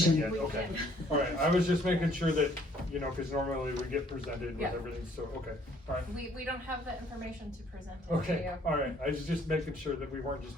yet. Okay, alright, I was just making sure that, you know, cause normally we get presented with Yeah. everything, so, okay, alright. We don't have the information to present it to Okay, you. alright, I was just making sure that we weren't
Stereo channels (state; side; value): normal; both; correlation 0.62